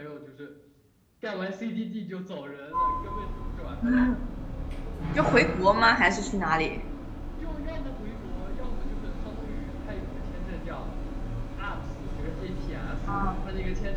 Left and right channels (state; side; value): identical; both; correlation 1.00